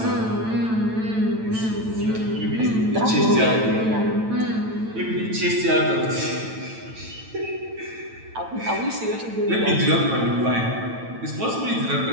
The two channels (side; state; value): left; late; 9.0 ms